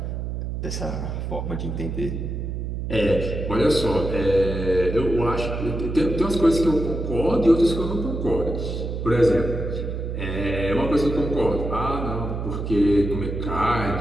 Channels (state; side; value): noise; right; hum, 4 dB below the sound